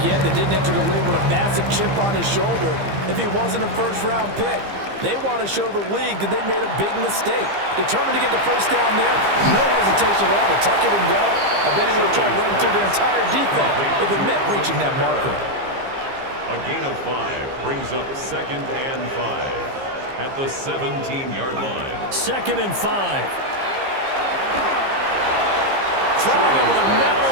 yet that didn't enter the league with a massive chip on his shoulder if he wasn't a first-round pick. They want to show the league that they made a big mistake. Determined to get the first down there. No hesitation at all to tuck it and go. I bet he would have tried running through the entire defense if it meant reaching that marker. A gain of 5 brings up 2nd and 5 at the 17-yard line. 2nd and 5. Throwing over the middle,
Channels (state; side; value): late; left; 15 ms